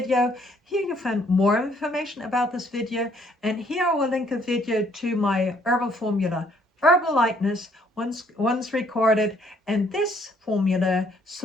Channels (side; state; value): both; normal; correlation 0.65